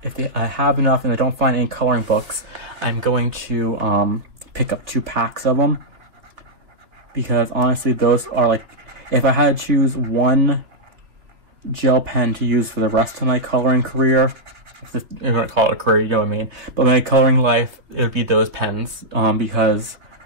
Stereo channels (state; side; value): late; left; 2.8 ms